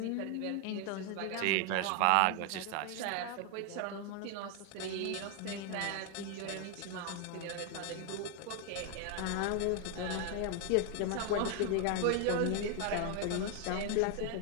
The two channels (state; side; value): different; both; correlation 0.00